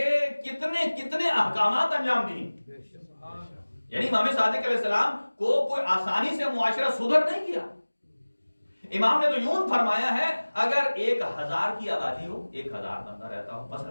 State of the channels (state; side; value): inverted; both; correlation -1.00